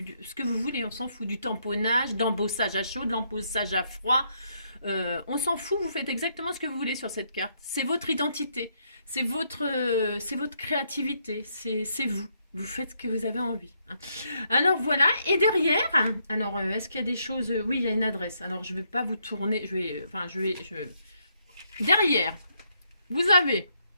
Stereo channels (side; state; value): both; inverted; correlation -0.74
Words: que vous voulez. On s'en fout. Du tamponnage, d'embossage à chaud, de l'embossage à froid. On s'en fout. Vous faites exactement ce que vous voulez sur cette carte. C'est votre identité. C'est votre créativité. C'est vous. Vous faites ce que vous avez envie. Hein. Alors voilà, et derrière, alors est-ce qu'il y a des choses? Oui, il y a une adresse. Alors je ne vais pas vous tourner, derrière, vous avez